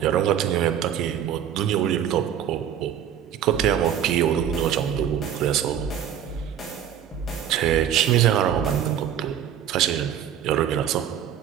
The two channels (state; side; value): quieter; left; 9.6 dB